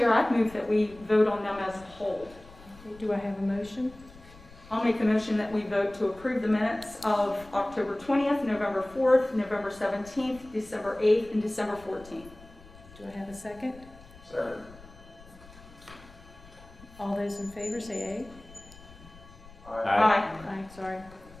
I'd move that we vote on them as a whole. Okay, do I have a motion? I'll make a motion that we vote to approve the minutes of October 20th, November 4th, November 17th, December 8th, and December 14th. Do I have a second? Second. All those in favor say Aye. Aye. aye. Aye, sorry.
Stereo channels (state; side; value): noise; left; rumble, 21 dB below the sound